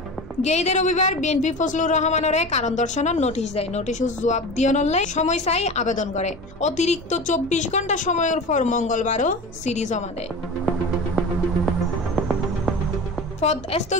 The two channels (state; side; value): normal; both; correlation 0.31